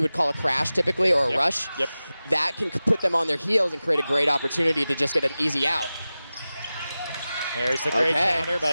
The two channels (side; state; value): both; inverted; correlation -0.95